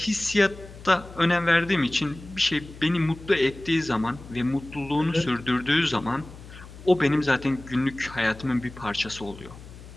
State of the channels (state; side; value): noise; left; hum, 17 dB below the sound